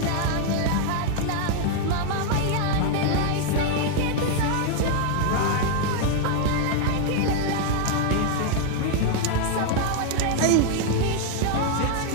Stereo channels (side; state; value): both; different; correlation 0.00